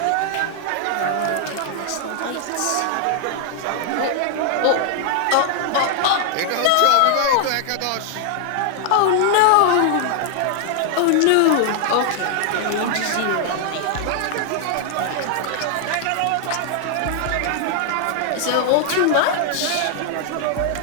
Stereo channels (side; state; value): both; different; correlation 0.00